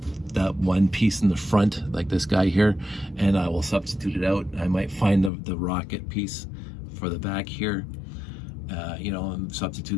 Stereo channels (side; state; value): right; drops out; at 5.3 s